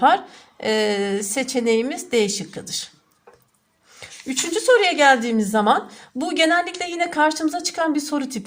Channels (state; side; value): identical; both; correlation 1.00